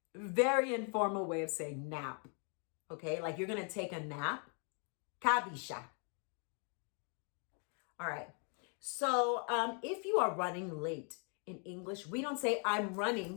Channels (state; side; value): quieter; right; 39.9 dB